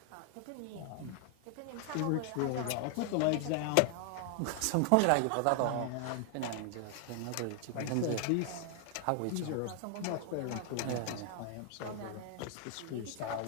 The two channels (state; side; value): different; both; correlation 0.00